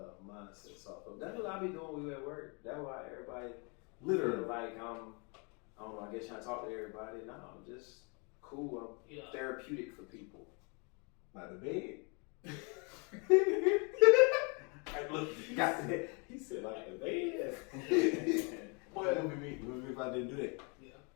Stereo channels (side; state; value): right; quieter; 33.9 dB